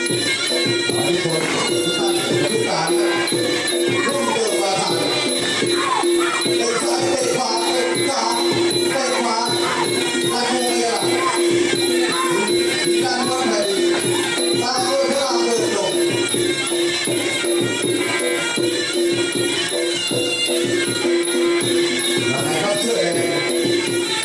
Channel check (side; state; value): both; identical; correlation 1.00